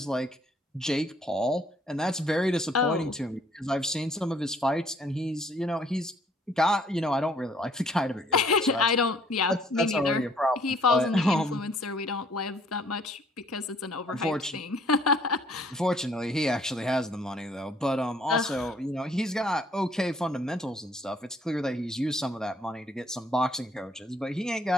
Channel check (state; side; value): normal; both; correlation 0.62